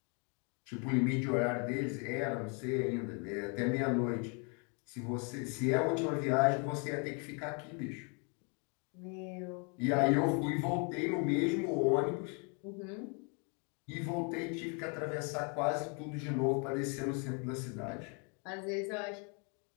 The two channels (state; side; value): quieter; right; 35.6 dB